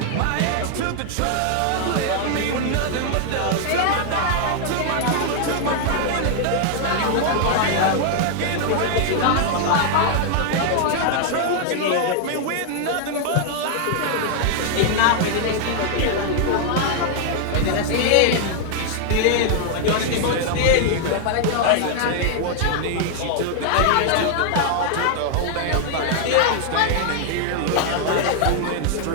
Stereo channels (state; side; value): different; both; correlation 0.00